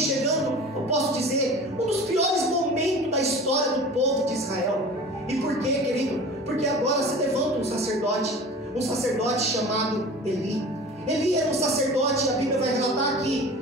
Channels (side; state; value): both; normal; correlation 0.39